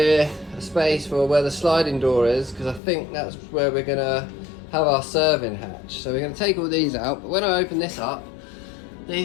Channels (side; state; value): right; drops out; at 2.8 s